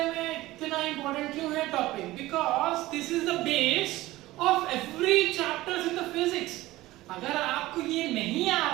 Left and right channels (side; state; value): left; quieter; 17.6 dB